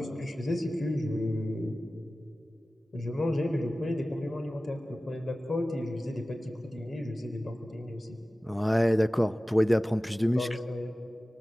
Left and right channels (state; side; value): normal; both; correlation 0.96